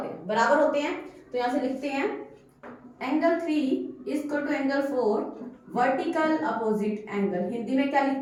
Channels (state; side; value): identical; both; correlation 1.00